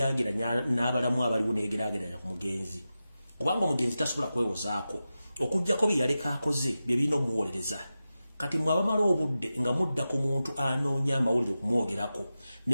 n'abalamu abaliwo neyegeraageranya ku mugenzi kubanga omugenzi tasobola kwewozaako okuggyako bye yaleka akoze bye birina omuwolereza. Kati mwabamala obudde nga mudda ku muntu anoonya amawulire okumwogerako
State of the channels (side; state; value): both; inverted; correlation -0.93